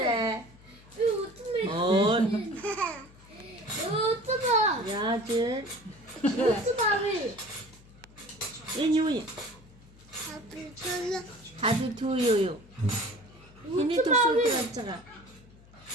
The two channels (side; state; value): left; noise; hum, 24 dB below the sound